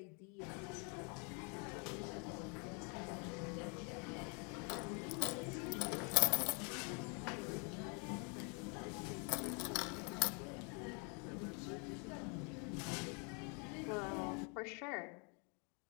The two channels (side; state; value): right; quieter; 35.9 dB